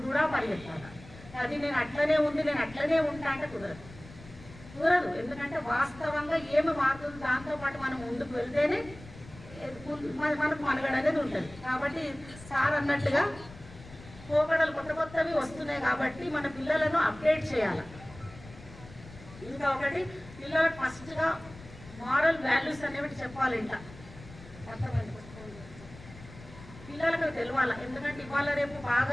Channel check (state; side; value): noise; left; rumble, 18 dB below the sound